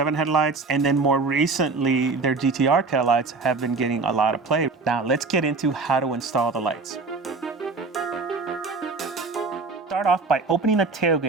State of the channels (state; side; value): quieter; left; 4.1 dB